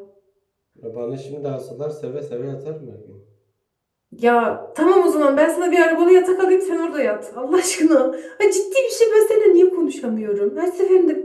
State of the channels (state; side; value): identical; both; correlation 1.00